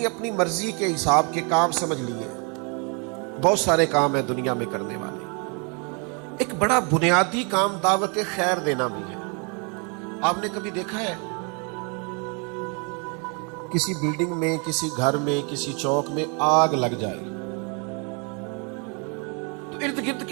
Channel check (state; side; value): quieter; left; 34.9 dB